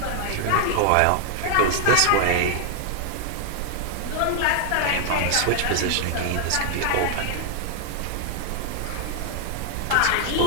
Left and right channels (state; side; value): different; both; correlation -0.01